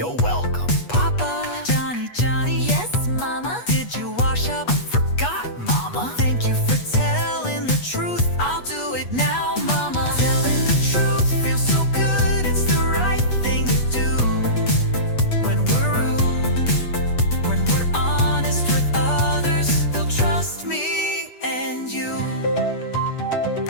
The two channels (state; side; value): late; right; 8.3 ms